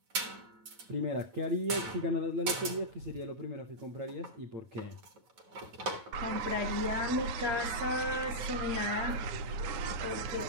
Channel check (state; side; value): late; left; 9.2 ms